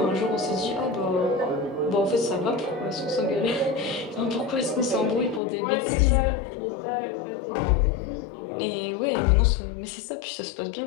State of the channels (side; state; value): right; drops out; at 5.4 s